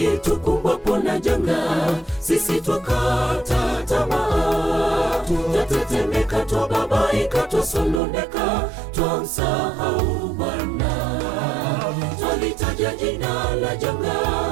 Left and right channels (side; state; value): left; drops out; at 8.0 s